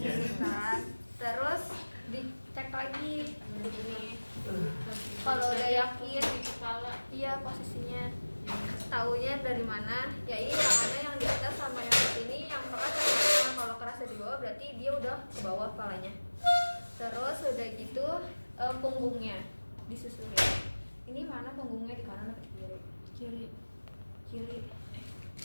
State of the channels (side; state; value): both; inverted; correlation -1.00